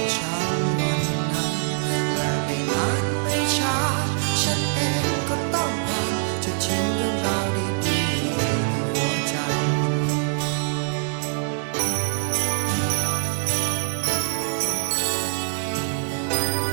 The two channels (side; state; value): left; silent; digital silence